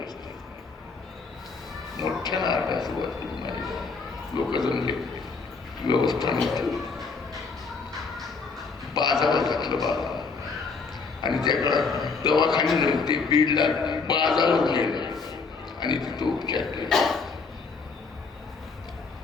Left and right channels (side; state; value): right; quieter; 4.7 dB